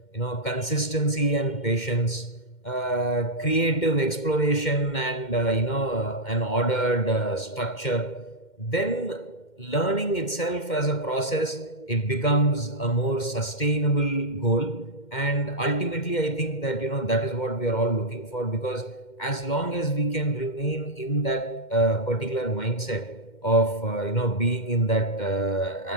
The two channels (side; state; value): right; late; 2.1 ms